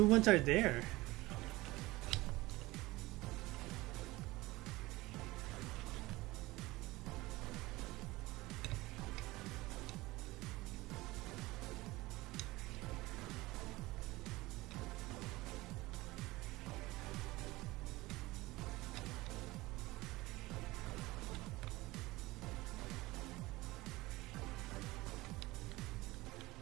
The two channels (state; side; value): quieter; left; 20.0 dB